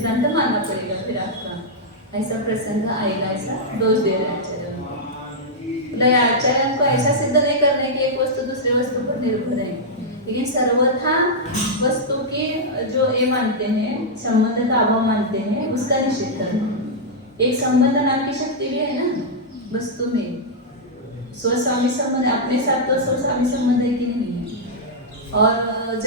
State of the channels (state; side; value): normal; both; correlation -0.07